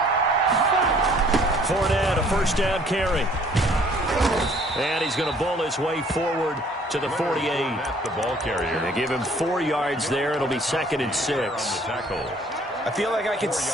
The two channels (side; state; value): both; normal; correlation 0.58